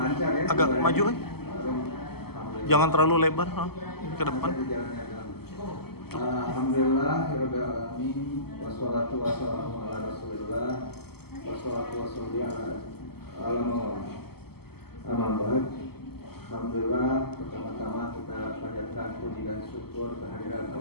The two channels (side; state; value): right; late; 0.96 ms